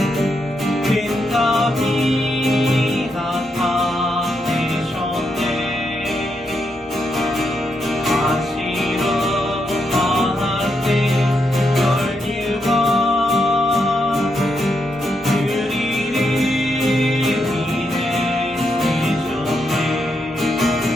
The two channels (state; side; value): normal; both; correlation 0.81